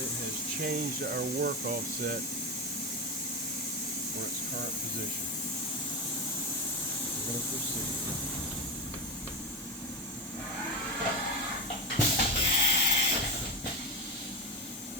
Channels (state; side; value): normal; both; correlation 0.16